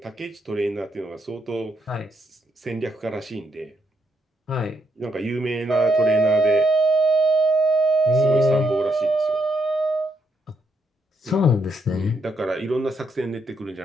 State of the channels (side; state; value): both; normal; correlation 0.77